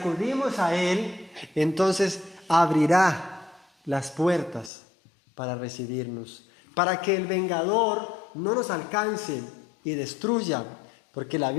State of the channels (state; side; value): drops out; right; at 4.7 s